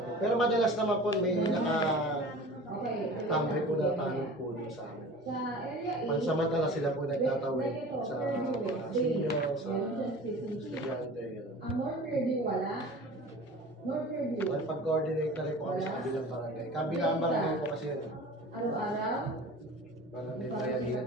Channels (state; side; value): normal; both; correlation 0.39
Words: Pero madalas naman po may nakatambay po na tanong po dun sa amin. Pansamantala sila po nagtatawid sa mga senior, sa estudyante. Ang North Fairview wala. North Fairview. Pag-coordinate na rin po kami sa kabilang barangay. Kabilang barangay po kasi yun. Araw-araw. Barangay Bayahiran